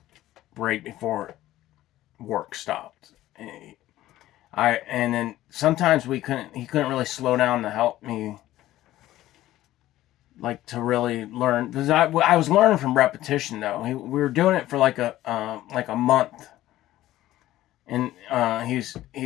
right before work stopped. And then sometimes he couldn't really slow down to help me, like, to really learn, because I was learning from repetition though. We were doing it for like a month, and he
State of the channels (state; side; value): quieter; right; 14.9 dB